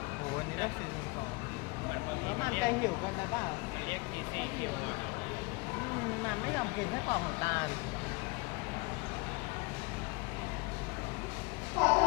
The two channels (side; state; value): right; quieter; 25.8 dB